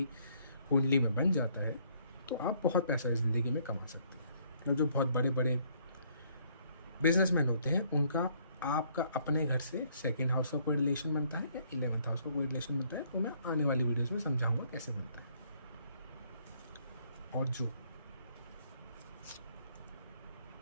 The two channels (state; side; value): inverted; both; correlation -0.65